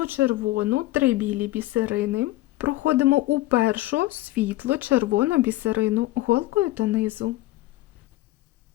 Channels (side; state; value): right; quieter; 17.3 dB